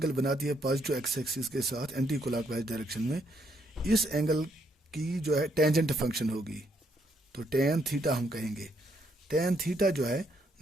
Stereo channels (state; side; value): normal; both; correlation 0.73